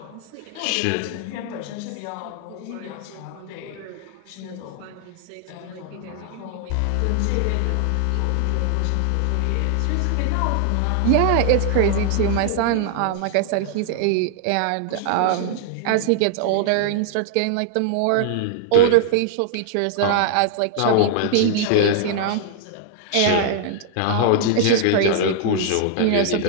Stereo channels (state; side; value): different; both; correlation 0.00